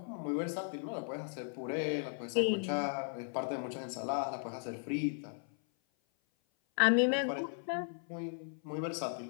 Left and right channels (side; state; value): right; silent; 54 dB below the other